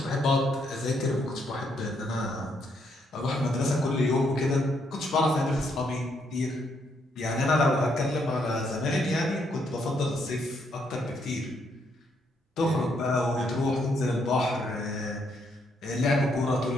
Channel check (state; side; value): normal; both; correlation 0.74